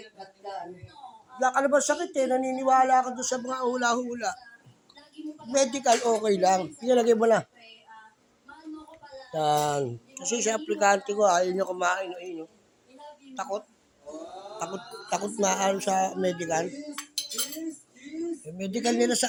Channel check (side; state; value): both; identical; correlation 1.00